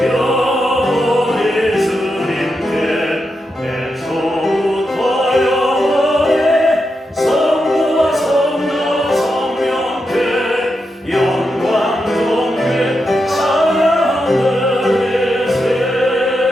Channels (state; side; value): normal; both; correlation 0.86